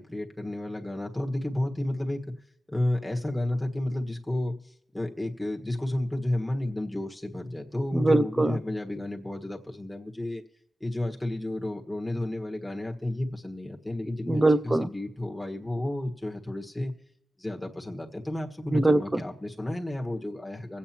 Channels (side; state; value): both; normal; correlation 0.95